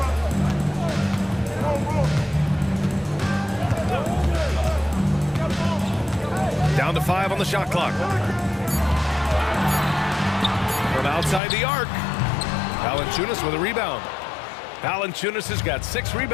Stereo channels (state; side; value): drops out; right; at 11.4 s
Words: Down to 5 on the shot clock. From outside the arc. Valanciunas with a rebound. Valanciunas has got 6